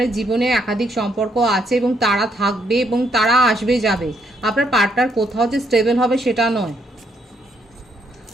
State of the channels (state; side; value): normal; both; correlation 0.74